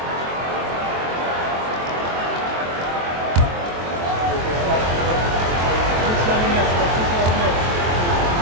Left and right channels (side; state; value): left; late; 23 ms